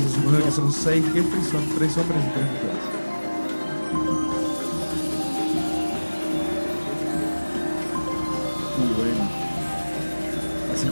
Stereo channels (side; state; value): both; inverted; correlation -1.00